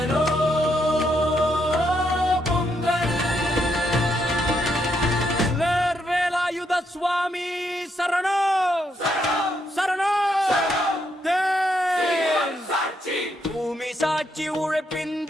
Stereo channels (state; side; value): normal; both; correlation 0.77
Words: பொங்கல். வேலாயுத சுவாமி சரணோ சரணோ. பூமி சாட்சி உழைப்பின்